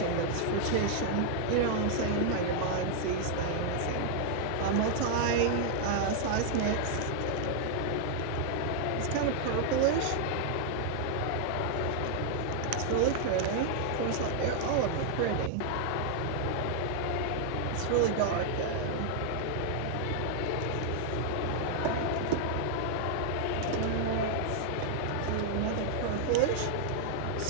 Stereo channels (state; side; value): different; both; correlation 0.00